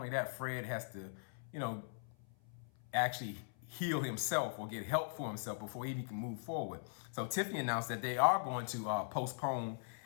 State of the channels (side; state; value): right; silent; 51 dB below the other